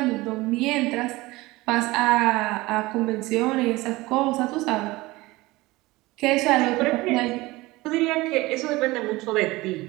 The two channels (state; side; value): quieter; left; 20.6 dB